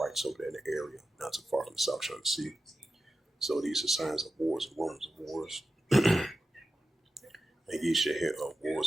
over there in the area, not too far from the South China Sea. So these are signs of wars and rumors of wars. And ye shall hear of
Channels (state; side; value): normal; both; correlation 0.93